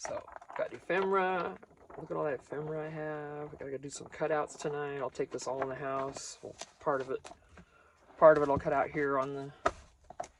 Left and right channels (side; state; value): both; identical; correlation 1.00